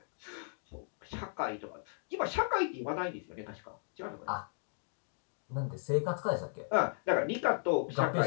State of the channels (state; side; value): silent; right; digital silence